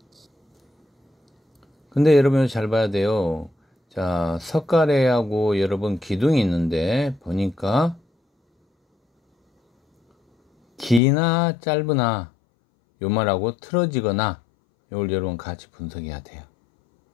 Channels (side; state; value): right; drops out; at 11.0 s